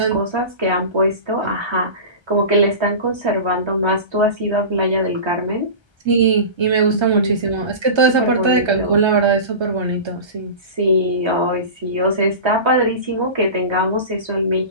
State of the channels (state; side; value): late; left; 1.3 ms